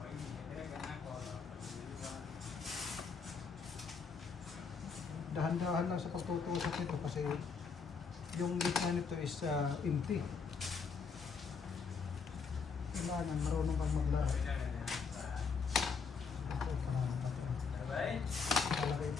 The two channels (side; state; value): right; quieter; 5.5 dB